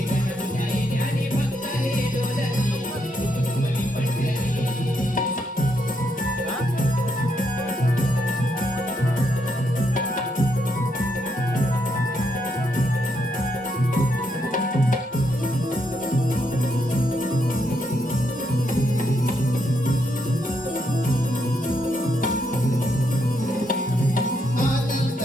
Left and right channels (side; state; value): both; normal; correlation 0.78